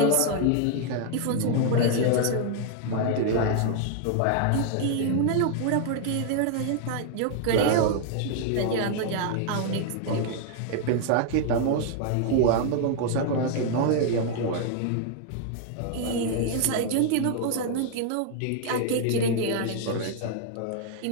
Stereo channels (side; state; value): both; different; correlation 0.00